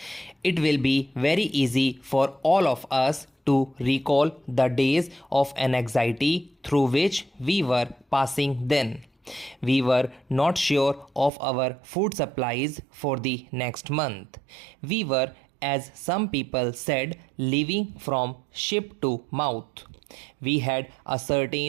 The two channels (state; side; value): drops out; left; at 11.3 s